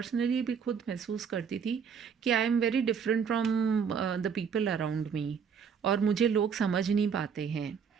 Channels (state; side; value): quieter; left; 6.7 dB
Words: भी खुद महसूस करती थी कि I am very different from the people around me, और मुझे लोग समझ नहीं पाते हैं।